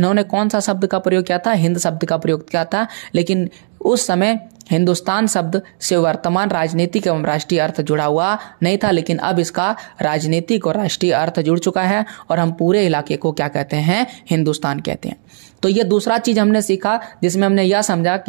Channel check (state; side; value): silent; left; digital silence